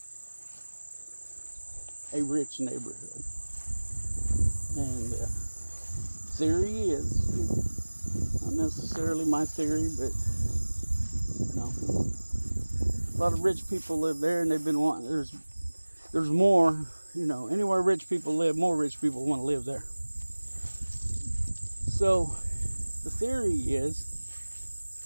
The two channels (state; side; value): inverted; both; correlation -1.00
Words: a rich neighborhood. And theory is, not necessarily my theory, but you know, a lot of rich people live there, and they've been wanting, there's more, you know, anywhere rich people live, more rich people want to live there. So the theory is